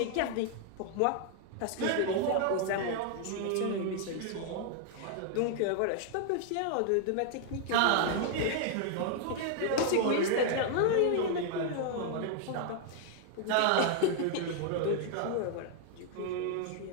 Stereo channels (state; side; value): different; both; correlation 0.00